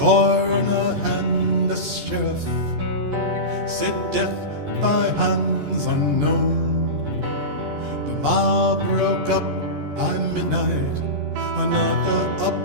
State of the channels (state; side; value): late; left; 14 ms